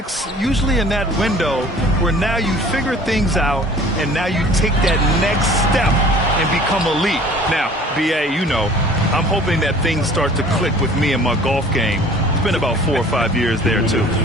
usually in that window where now you figure things out and now you take that next step and become elite. Now, B.A., you know, I'm hoping that things start to click with me in my golf game. It's been about 4 or 5 years there, too.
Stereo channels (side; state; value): both; normal; correlation 0.49